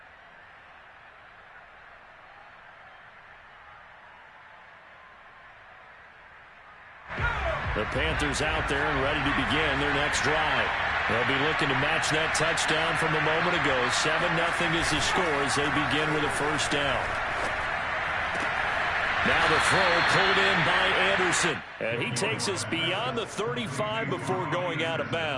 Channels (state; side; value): identical; both; correlation 1.00